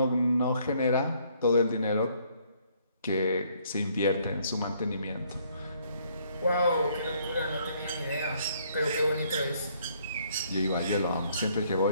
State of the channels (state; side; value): inverted; both; correlation -0.66